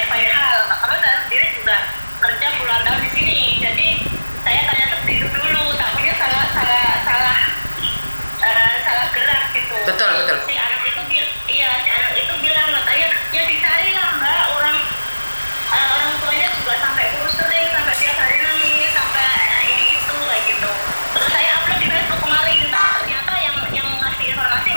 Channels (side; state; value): both; inverted; correlation -1.00